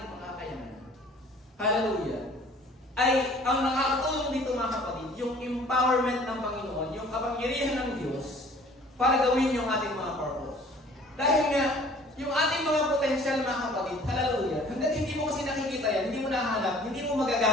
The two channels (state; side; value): normal; both; correlation 0.52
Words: mga kakayanan. Hallelujah. Ay ang nakakatulong dito mga kapatid, yung empowerment ng Panginoon, yung kapangyarihan ng Diyos para gawin yung ating mga purpose. Dahil nga, yung ating mga potential mga kapatid, hallelujah, hanggang hindi mo kasi nakikita yan, hindi mo nahanap, hindi mo